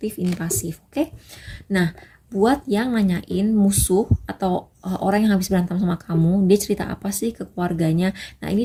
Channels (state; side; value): identical; both; correlation 1.00